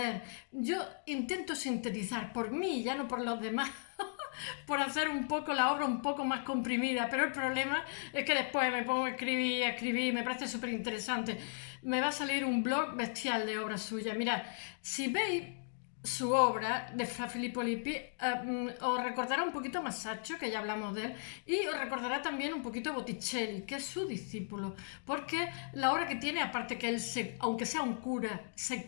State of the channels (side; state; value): right; silent; digital silence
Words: Yo intento sintetizar por mí, ya no por los demás, por hacer un poco la obra un poco más comprimida, pero el problema es que después me pongo a escribir, me parece súper interesante. Me va a salir un blog bestial de obras suyas. Mirad, si veis su obra de Fra Filippo Lippi, os recordará un poquito a Masaccio, que ya hablamos de él, y os recordará también un poquito a Botticelli, que es su discípulo, porque la obra que tiene, aparte que él, aunque sea un cura,